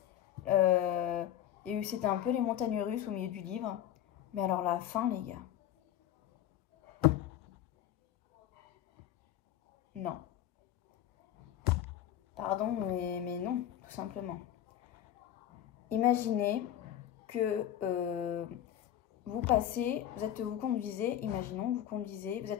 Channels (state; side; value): quieter; right; 11.4 dB